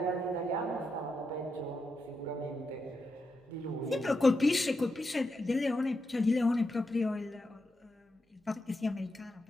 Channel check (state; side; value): normal; both; correlation 0.86